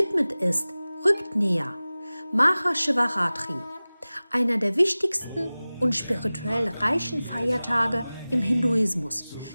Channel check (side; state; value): both; inverted; correlation -0.98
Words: ist, rückt näher. Maha Shivaratri, einer der wichtigsten und spirituell reichen Feiertage im Hinduismus,